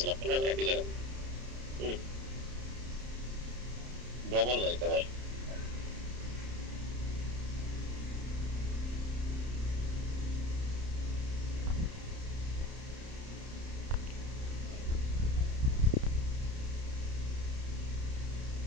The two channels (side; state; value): left; late; 31 ms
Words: আপনারা একই জায়গায়। ডবল লাইক ভাই।